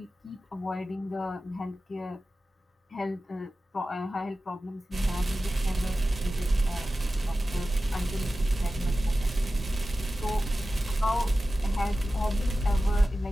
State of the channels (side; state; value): both; normal; correlation 0.94